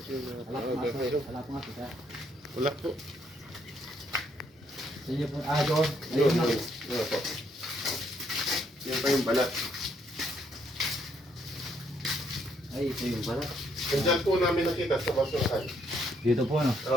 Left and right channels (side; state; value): both; normal; correlation 0.71